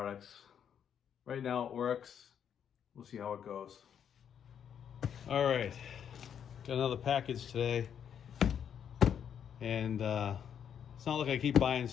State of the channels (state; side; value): quieter; right; 8.5 dB